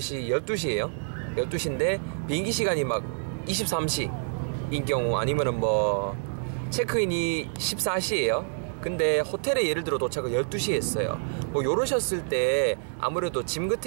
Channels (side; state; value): left; silent; digital silence